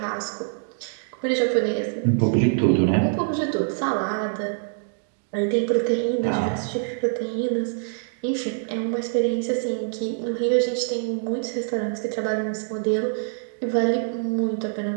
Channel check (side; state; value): left; silent; digital silence